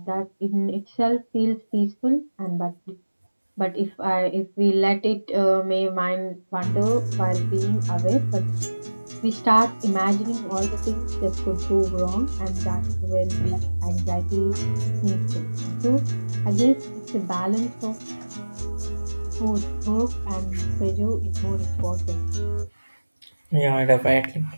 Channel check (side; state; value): both; inverted; correlation -1.00